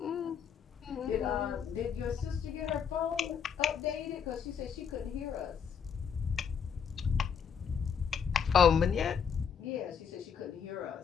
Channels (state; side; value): quieter; right; 7.1 dB